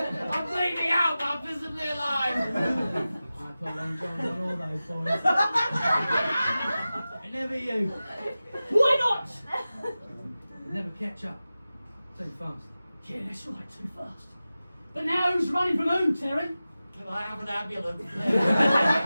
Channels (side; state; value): both; inverted; correlation -0.95